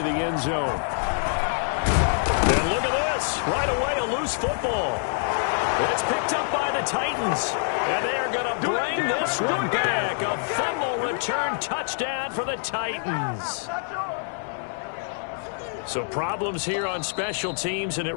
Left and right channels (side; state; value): right; silent; digital silence